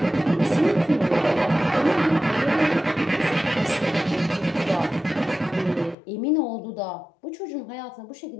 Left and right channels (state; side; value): drops out; right; at 6.0 s